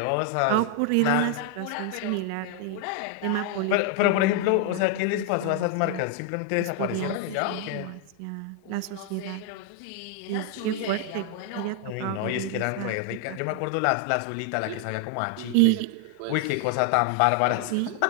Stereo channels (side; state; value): both; different; correlation 0.00